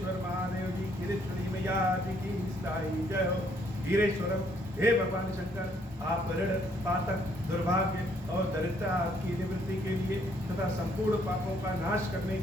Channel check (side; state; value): both; normal; correlation 0.68